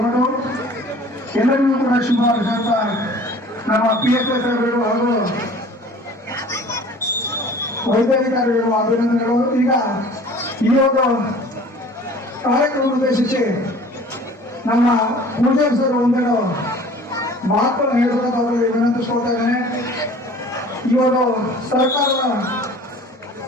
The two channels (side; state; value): both; normal; correlation 0.47